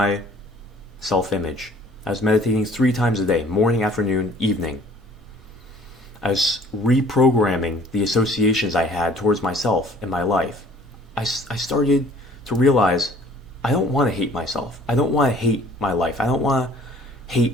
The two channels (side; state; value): both; normal; correlation 0.53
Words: self-image. I was meditating 3 times a day, morning, afternoon, evening. I was reprogramming the associations I had towards myself and my life. I started to realize I don't want to hate myself. I don't want to hate my life. I don't want to